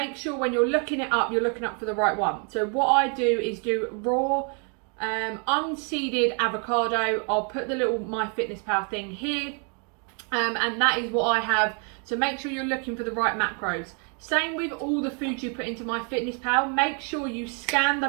sure when you're looking it up, you're looking up for the right one. So what I do is do raw, unseeded avocado. I'll put the little MyFitnessPal thing here, and that is what I have. So make sure you're looking for the right macros. Same with all the food you put into MyFitnessPal. Make sure you scan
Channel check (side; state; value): left; quieter; 39.5 dB